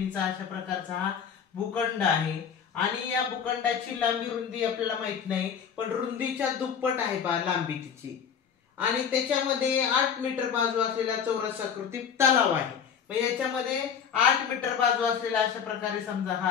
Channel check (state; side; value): quieter; right; 7.4 dB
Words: अशा प्रकारचा हा भूखंड आहे आणि या भूखंडाची लांबी रुंदी आपल्याला माहित नाही, पण रुंदीच्या दुप्पट आहे पहा लांबी तिची. आणि त्याच्यामध्ये 8 मीटर बाजू असलेला चौरसाकृती तलाव आहे. मग याच्यामध्ये 8 मीटर बाजू असलेला अशा प्रकारे समजा